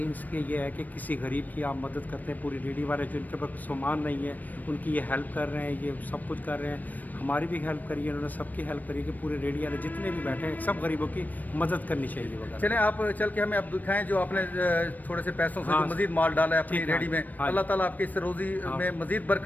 اس کے یہ ہے کہ کسی غریب کی آپ مدد کرتے ہیں. پوری ریڈی والے جو ان کے پاس سامان نہیں ہے ان کی یہ ہیلپ کر رہے ہیں, یہ سب کچھ کر رہے ہیں. ہماری بھی ہیلپ کری ہے, انہوں نے سب کی ہیلپ کری کہ پورے ریڈی والے جتنے بھی بیٹھے ہیں سب غریبوں کی مدد کرنی چاہیے وغیرہ. چلیں آپ چل کے ہمیں اب دکھائیں جو آپ نے تھوڑے سے پیسوں سے جو مزید مال ڈالا ہے اپنی ریڈی میں. اللہ تعالیٰ آپ کی اس روزی میں مزید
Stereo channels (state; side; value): late; right; 0.083 ms